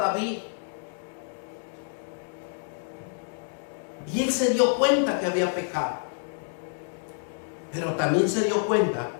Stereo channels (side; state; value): right; silent; 59 dB below the other